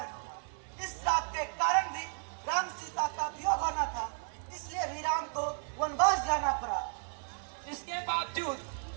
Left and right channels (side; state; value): left; silent; 55 dB below the other